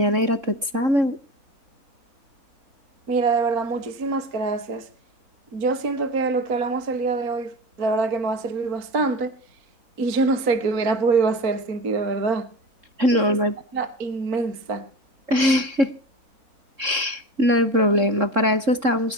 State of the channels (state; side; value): late; left; 3.7 ms